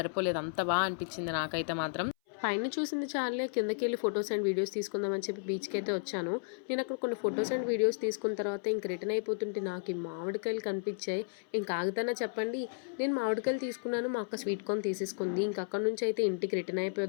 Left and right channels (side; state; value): right; silent; 56 dB below the other